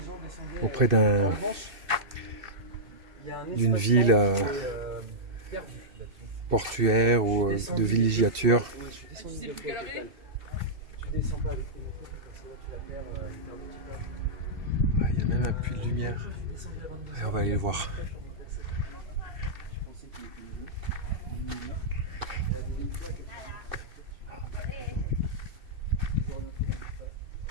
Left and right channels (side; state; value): left; late; 2.6 ms